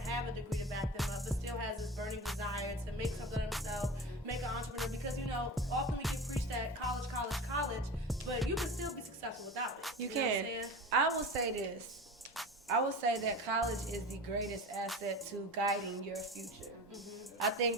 have a degree to back them up, but still has this burning desire to make something of themselves, make an entrepreneur? Because, often we get preached at college, but you can still be successful without it. You can. I will say this. I will say that college is the greatest asset to guiding your future. Mm-hmm. I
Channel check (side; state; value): both; normal; correlation 0.31